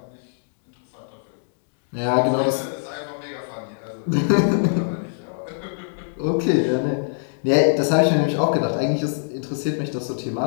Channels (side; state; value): right; silent; digital silence